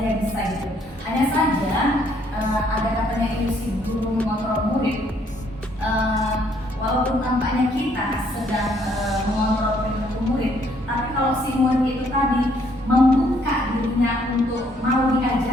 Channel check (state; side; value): normal; both; correlation 0.67